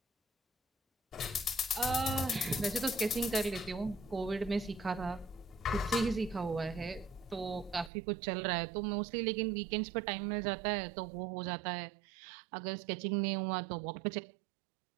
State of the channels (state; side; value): drops out; left; at 7.9 s